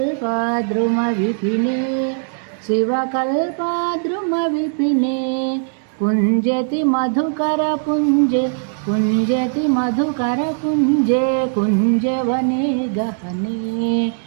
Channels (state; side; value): silent; left; 66 dB below the other